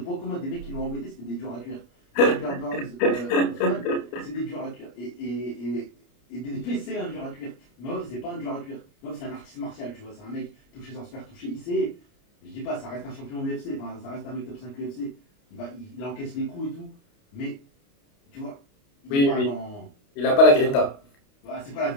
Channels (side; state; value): right; late; 29 ms